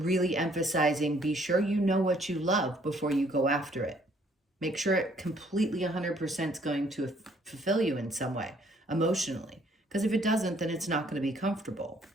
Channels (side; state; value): both; normal; correlation 0.63